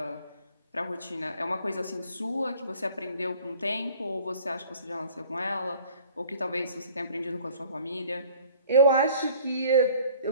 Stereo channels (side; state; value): both; inverted; correlation -0.52